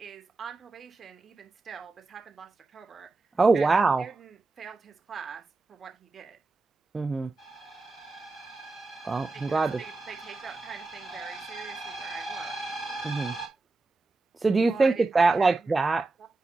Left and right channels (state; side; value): quieter; left; 3.5 dB